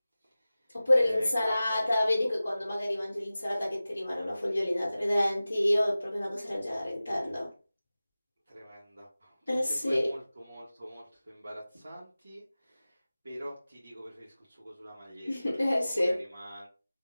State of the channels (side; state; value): both; inverted; correlation -0.97